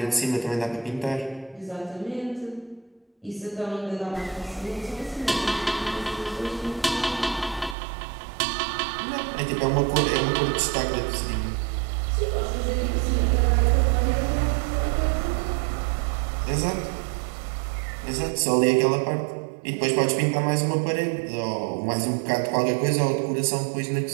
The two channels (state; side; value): drops out; left; at 7.8 s